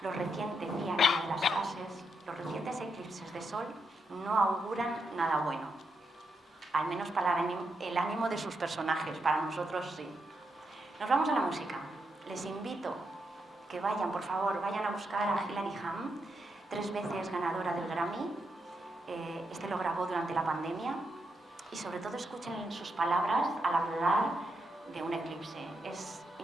Decía en una de las frases, los recientes eclipses de sol no auguran nada bueno, al menos para el ánimo de sus personajes, para nosotros sí. Nos vamos a la música. Les invito que vayan, por favor, vayan a buscar a Hilary Hahn, 3 veces ganadora del Grammy. Este lo grabó durante la pandemia y sobre todo escuchen sus palabras al hablar de un eclipse. Es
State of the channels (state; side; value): normal; both; correlation 0.82